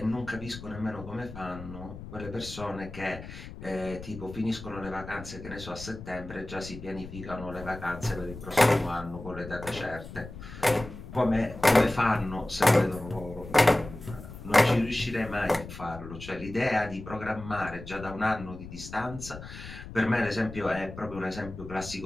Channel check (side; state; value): left; noise; rumble, 12 dB below the sound